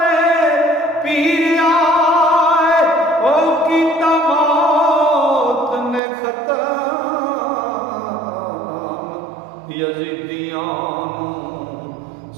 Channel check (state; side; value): drops out; left; at 6.0 s